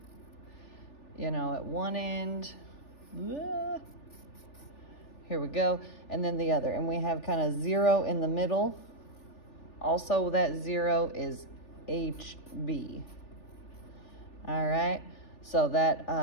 you know, at one end. Here we go. And then the other. And we have kind of 0 in the middle. Also, that 0 is HB. All right. So that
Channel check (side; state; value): right; late; 3.4 ms